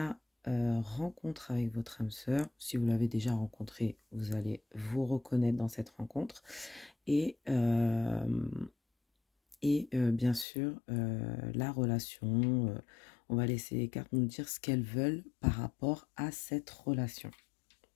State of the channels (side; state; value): right; drops out; at 10.5 s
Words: rencontre avec votre âme sœur. Si vous l'avez déjà rencontrée, vous allez vous reconnaître dans cette rencontre. Et bien sûr, la relation. On va laisser les cartes nous dire ce qu'elles veulent par rapport à cette relation.